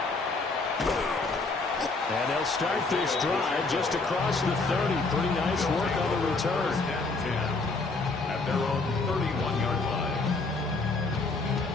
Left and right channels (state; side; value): quieter; right; 3.7 dB